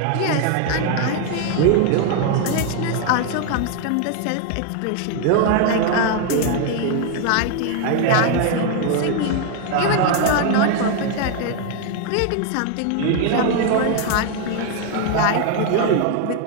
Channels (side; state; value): both; different; correlation 0.01